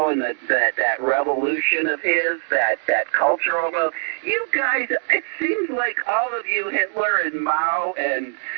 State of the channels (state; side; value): silent; left; digital silence